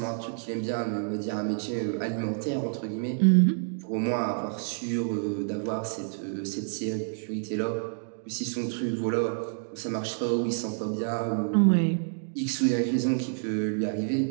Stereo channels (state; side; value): silent; left; digital silence